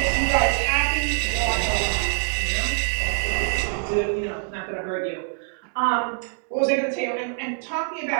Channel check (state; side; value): silent; left; digital silence